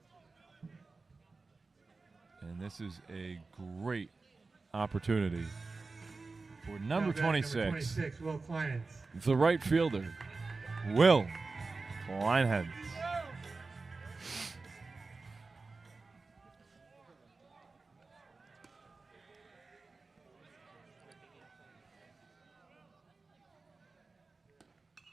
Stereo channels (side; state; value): left; quieter; 3.9 dB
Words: And this is a great opportunity for number 26, Will Kleinitz. the right fielder, Will Kleinitz.